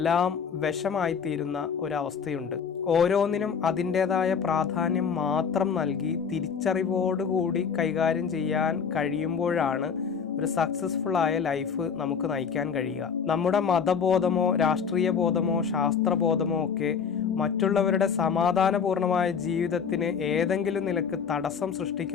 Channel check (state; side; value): quieter; right; 6.5 dB